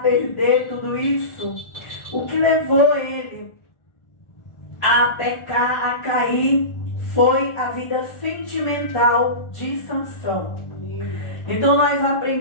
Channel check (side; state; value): right; late; 1.4 ms